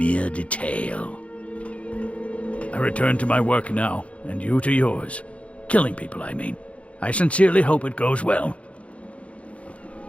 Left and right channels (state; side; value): late; right; 0.063 ms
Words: detail. I return to my work now, and you to yours. Killing people, I mean. I sincerely hope it goes well.